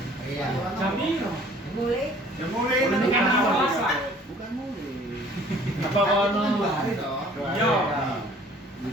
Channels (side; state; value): both; normal; correlation 0.53